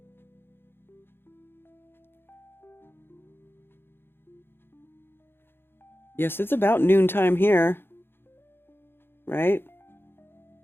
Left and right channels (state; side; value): late; right; 0.11 ms